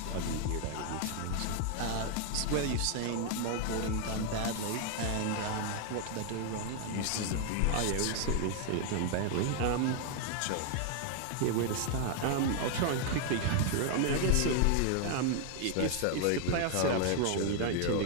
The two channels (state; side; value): different; both; correlation 0.00